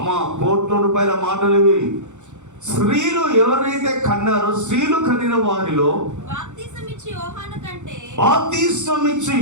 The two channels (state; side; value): late; left; 0.85 ms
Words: ₹1,00,00,000 మాటలు ఇవి. స్త్రీలు ఎవరైతే కన్నారో, స్త్రీలు కనిన వారిలో బాప్తిస్మమిచ్చు